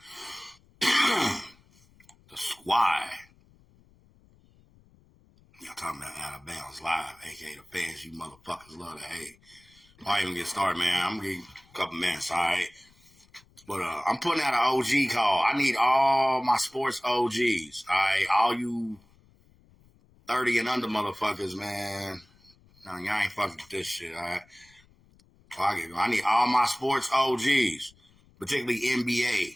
the squad. Y'all talking about Out of Bounds Live, aka the fans you motherfuckers love to hate. I'll even get started, man. I'm gonna give you a couple minutes, alright? But I'm putting out an OG call. I need all my sports OGs, alright? All you 30 and under motherfuckers, man. No, y'all ain't fucking with this shit, alright? I need all my sports OGs, particularly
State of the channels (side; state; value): left; noise; rumble, 30 dB below the sound